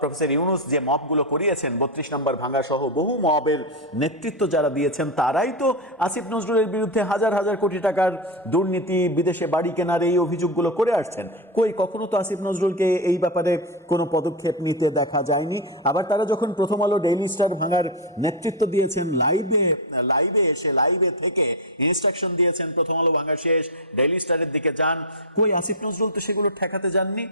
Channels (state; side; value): normal; both; correlation 0.07